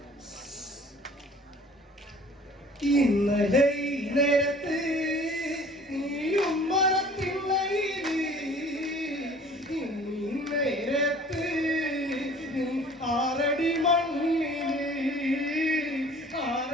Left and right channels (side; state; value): both; normal; correlation 0.49